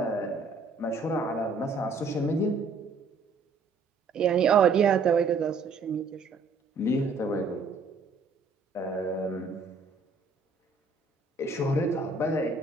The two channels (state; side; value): quieter; left; 4.0 dB